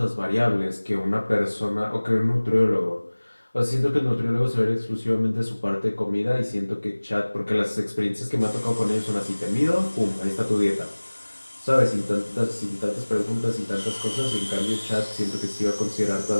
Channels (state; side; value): inverted; both; correlation -1.00